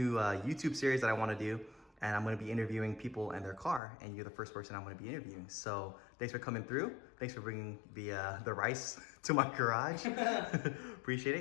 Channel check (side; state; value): right; drops out; at 3.8 s